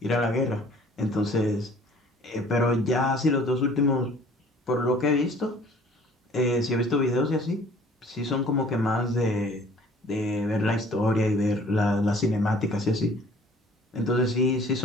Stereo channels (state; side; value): normal; both; correlation 0.53